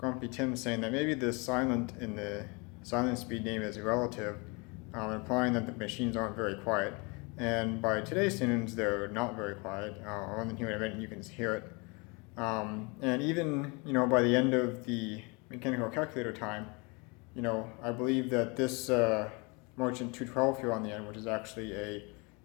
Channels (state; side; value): quieter; right; 29.7 dB